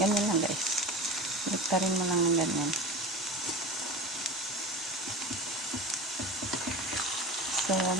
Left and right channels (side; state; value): both; normal; correlation 0.30